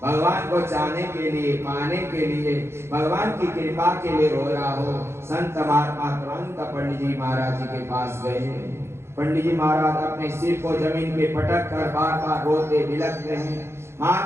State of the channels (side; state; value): left; late; 0.12 ms